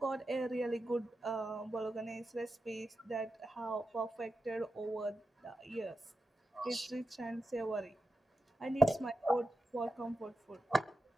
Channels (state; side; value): normal; both; correlation 0.90